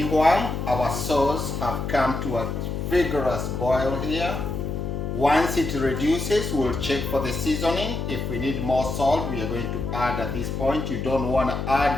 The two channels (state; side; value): noise; left; hum, 3 dB below the sound